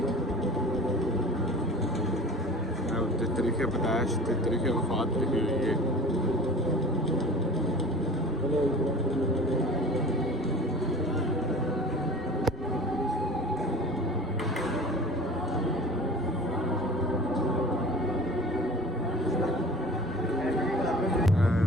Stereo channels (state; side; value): normal; both; correlation 0.41